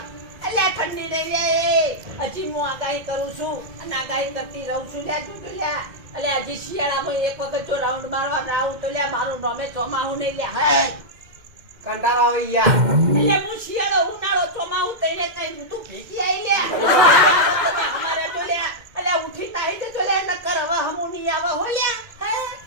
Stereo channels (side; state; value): left; late; 2.1 ms